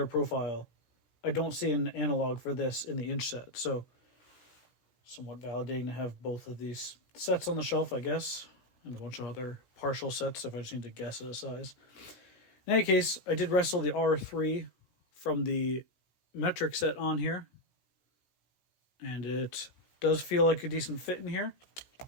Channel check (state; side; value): late; right; 17 ms